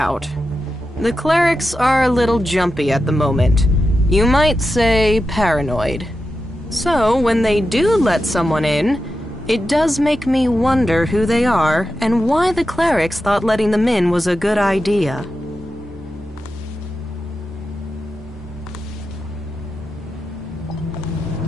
The clerics are a little jumpy at the moment. You might say paranoid. So, when they do let someone in, it does make me wonder who they are and why the clerics thought letting them in was a good idea.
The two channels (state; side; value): normal; both; correlation 0.90